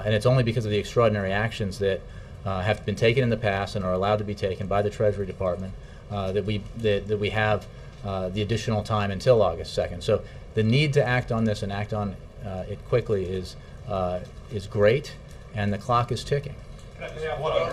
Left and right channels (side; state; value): both; identical; correlation 1.00